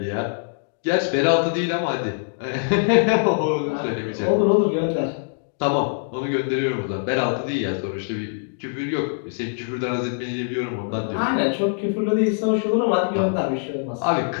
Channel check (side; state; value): right; silent; digital silence